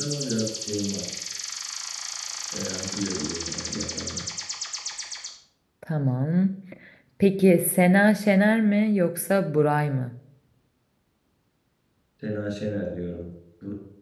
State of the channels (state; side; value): identical; both; correlation 1.00